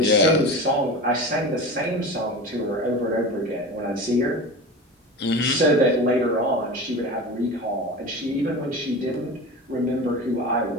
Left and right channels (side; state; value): both; normal; correlation 0.30